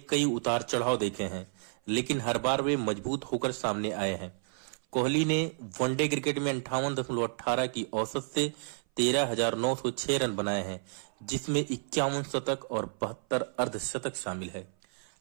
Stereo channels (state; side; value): silent; left; 56 dB below the other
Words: कई उतार चढ़ाव देखे हैं, लेकिन हर बार वे मजबूत होकर सामने आए हैं। कोहली ने वनडे क्रिकेट में 58.18 की औसत से 13,906 रन बनाए हैं, जिसमें 51 शतक और 72 अर्धशतक शामिल है।